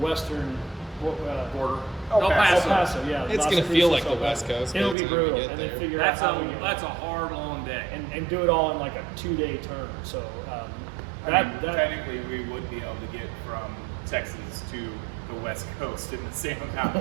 Border. El El El Paso. Paso. Yeah, It's Las gonna feel Cruces, like El the West Paso. Coast It'll by be the time we brutal, get and there. then figure That's out how we get a hard, long day. and do it all in like a 2-day turn. So I mean, technically, we would be able to get from Texas to the West Coast in the same amount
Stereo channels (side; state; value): left; drops out; at 5.0 s